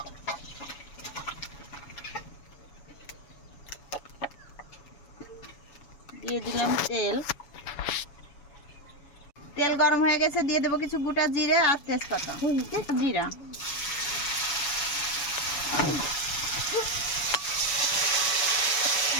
দিয়ে দিলাম তেল। তেল গরম হয়ে গেছে, দিয়ে দেবো কিছু গোটা জিরে আর তেজপাতা। জিরা,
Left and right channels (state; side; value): late; right; 7.1 ms